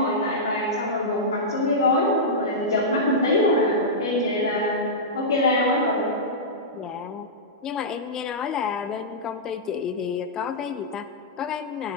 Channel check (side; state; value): both; normal; correlation -0.13